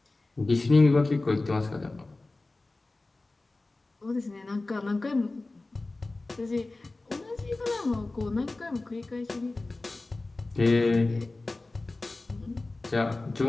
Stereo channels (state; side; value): quieter; right; 3.2 dB